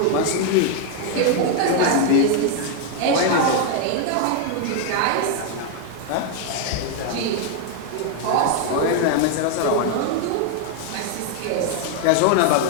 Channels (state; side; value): different; both; correlation 0.00